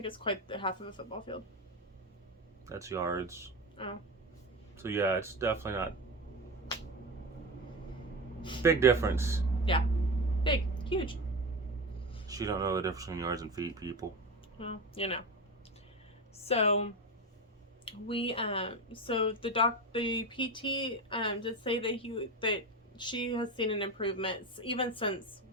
it's quite the half of a football field. That's yards. Oh. So yeah, it's definitely not big difference. Yeah. Big. Huge. She don't know the difference between yards and feet, people. Well, you know. So we so the PT did say that she has seen an improvement even since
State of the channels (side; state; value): both; normal; correlation 0.22